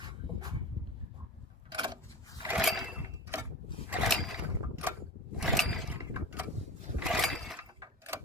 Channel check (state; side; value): normal; both; correlation 0.31